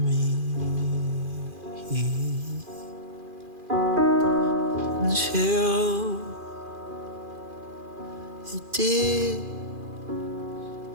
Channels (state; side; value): late; left; 2.4 ms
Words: me, until it did